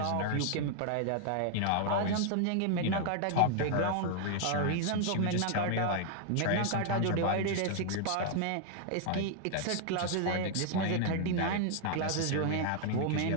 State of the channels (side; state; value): both; different; correlation 0.00